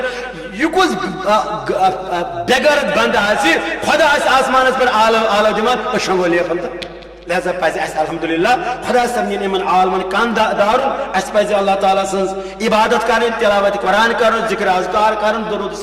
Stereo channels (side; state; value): both; identical; correlation 1.00